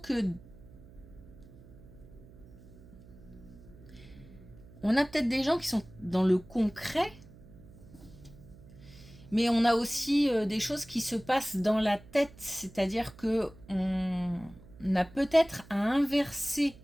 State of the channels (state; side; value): noise; right; hum, 21 dB below the sound